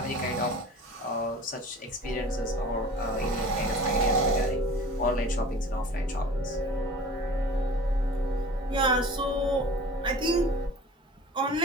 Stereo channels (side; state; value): both; normal; correlation 0.42